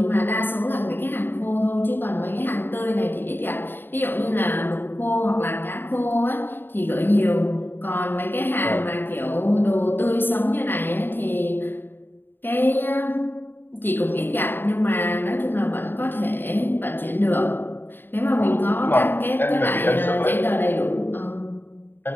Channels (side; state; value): right; late; 0.097 ms